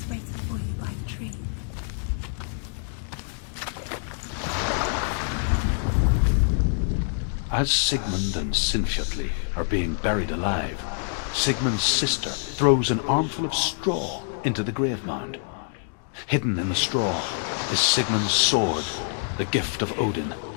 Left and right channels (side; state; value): right; silent; digital silence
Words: waiting for you by the tree. As Sigmund and Sinfjotli are being buried alive, Sigmund's sister throws an armful of straw into the grave mound. Hidden in the straw is Sigmund's sword, the gift of Odin.